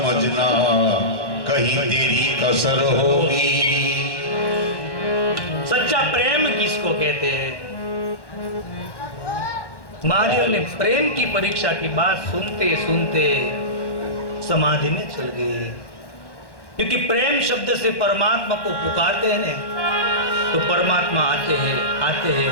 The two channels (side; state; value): right; late; 1.1 ms